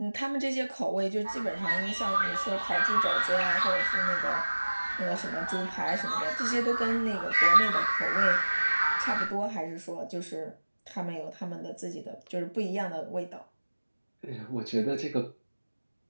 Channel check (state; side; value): inverted; both; correlation -1.00